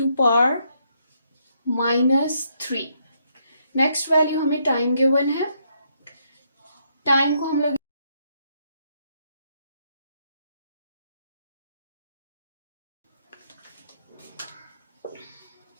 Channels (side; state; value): both; inverted; correlation -0.75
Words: नेक्स्ट वैल्यू हमें टाइम गिवन है। टाइम को हम लोग